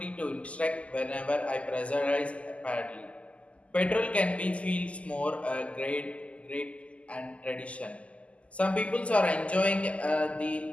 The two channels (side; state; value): right; late; 0.063 ms